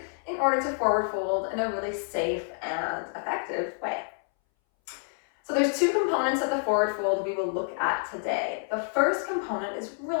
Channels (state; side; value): silent; right; 59 dB below the other